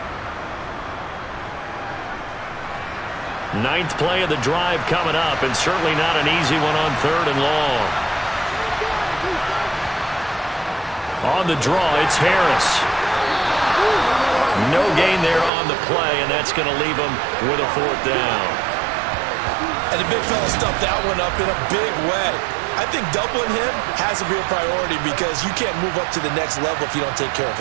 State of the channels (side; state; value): left; drops out; at 15.5 s